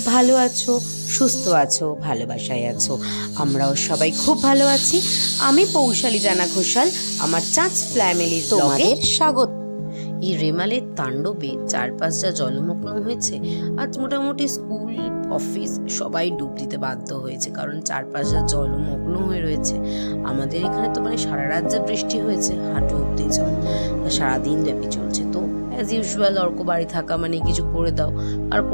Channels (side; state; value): both; inverted; correlation -1.00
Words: ভালো আছো, সুস্থ আছো, ভালোবাসায় আছো। আমরাও সবাই খুব ভালো আছি। আমি পৌশালী জানা ঘোষাল, আমার চাঁচ ফ্যামিলির তোমাদের স্বাগত। এই রেমালের তাণ্ডবে চারপাশ যা জলমগ্ন হয়েছে, আজ মোটামুটি স্কুল অফিস সবাই ডুব দিতে বাধ্য হয়েছে, কারণ চারপাশ যা জলমগ্ন হয়ে রয়েছে। আমাদের এখানে তো সারা রাত যা বৃষ্টি হয়েছে, হাঁটু অব্দি জল, সারাদিন ব্যাপী চলছে। তো অ্যাজ ইউজুয়াল অর্ক বাড়ি থাকা মানে কিছু করে দাও, আর